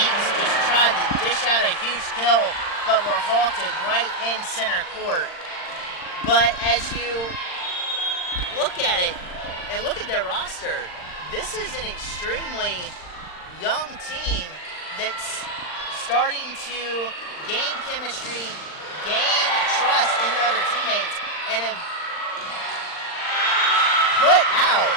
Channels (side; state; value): right; late; 39 ms